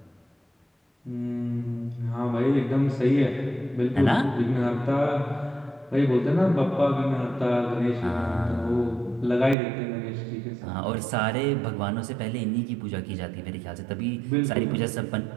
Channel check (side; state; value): left; drops out; at 9.6 s